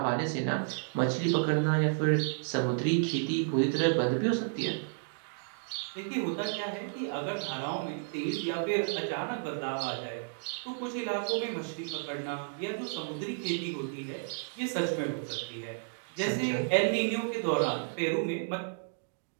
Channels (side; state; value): left; silent; digital silence